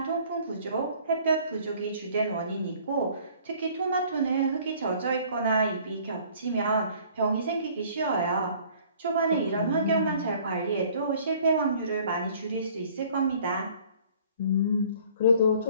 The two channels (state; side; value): inverted; both; correlation -0.54